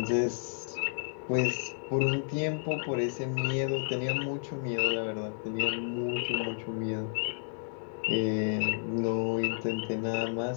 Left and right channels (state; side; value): silent; right; 57 dB below the other